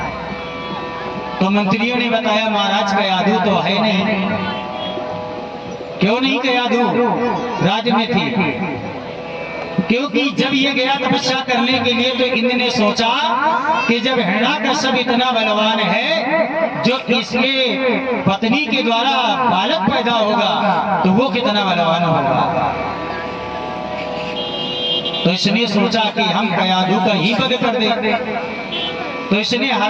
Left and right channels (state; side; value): identical; both; correlation 1.00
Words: तो मंत्रियों ने बताया महाराज कयाधु तो है नहीं। क्यों नहीं कयाधु राज्य में थी? क्योंकि जब ये गया तपस्या करने के लिए तो इंद्र ने सोचा कि जब हिरण्याकश्यप इतना बलवान है, जो इसके पत्नी के द्वारा बालक पैदा होगा तो वो कितना बलवान होगा। तो इसने सोचा कि हम कयाधु का ही वध कर दे। तो इसने